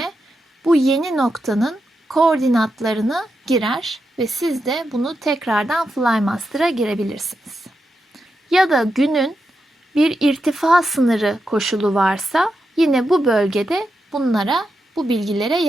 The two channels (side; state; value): both; normal; correlation 0.86